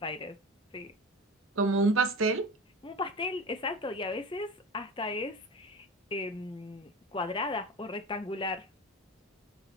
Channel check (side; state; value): both; normal; correlation 0.30